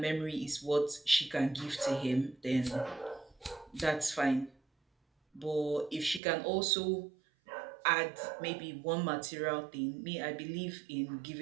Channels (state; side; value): drops out; left; at 6.2 s